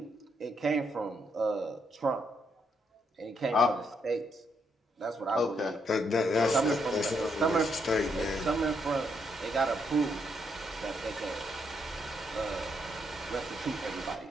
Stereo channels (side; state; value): both; normal; correlation 0.76